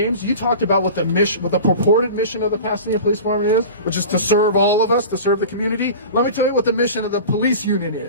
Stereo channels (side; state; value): both; inverted; correlation -0.35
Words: you talked about what the purported mission of the Pasadena Police Department is, which is to serve all of us, to serve the community. Let me tell you what the mission of the police union